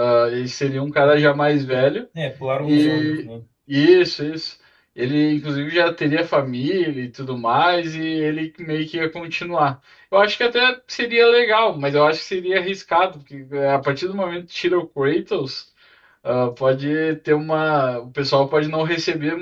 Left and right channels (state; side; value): identical; both; correlation 1.00